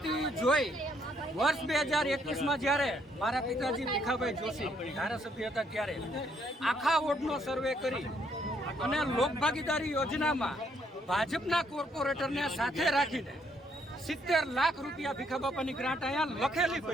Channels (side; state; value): both; normal; correlation 0.70